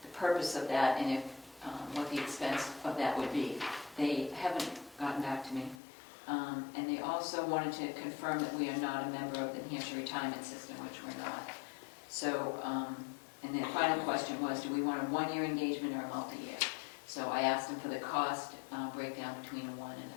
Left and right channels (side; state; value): right; drops out; at 5.8 s